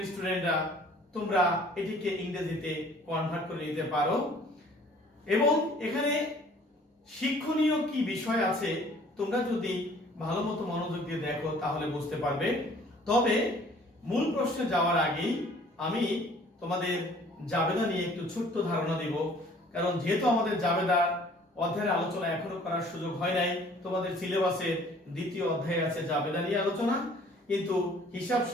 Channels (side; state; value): both; normal; correlation 0.54